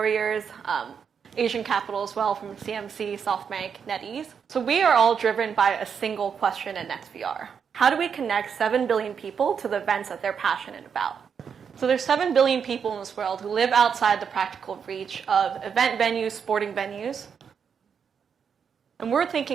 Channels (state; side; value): quieter; left; 6.9 dB